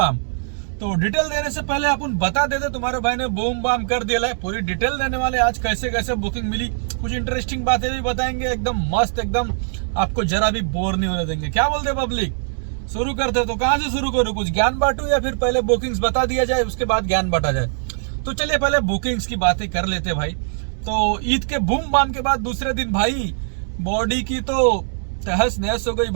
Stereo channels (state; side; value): silent; left; 65 dB below the other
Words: तो डिटेल देने से पहले अपन बता देते तुम्हारे भाई ने बूम बाम कर दिया है। पूरी डिटेल देने वाले आज कैसे कैसे बुकिंग मिली, कुछ इंटरेस्टिंग बातें भी बताएंगे, एकदम मस्त, एकदम आपको जरा भी बोर नहीं होने देंगे। क्या बोलते पब्लिक, शुरू करते? तो कहाँ से शुरू करूँ, कुछ ज्ञान बांटू या फिर पहले बुकिंग्स बता दिया जाए उसके बाद ज्ञान बांटा जाए? तो चलिए पहले बुकिंग्स की बातें कर लेते भाई। तो ईद के बूम बाम के बाद दूसरे दिन भाई बॉडी की तो तहस नहस हो गई